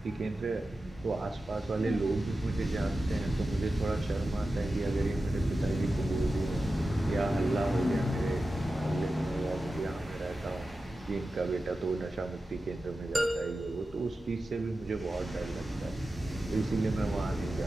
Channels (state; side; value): normal; both; correlation 0.93